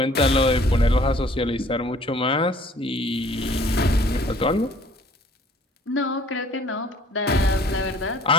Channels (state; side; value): normal; both; correlation 0.55